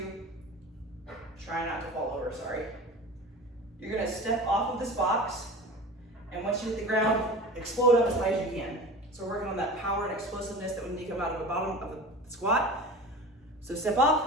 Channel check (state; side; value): normal; both; correlation 0.35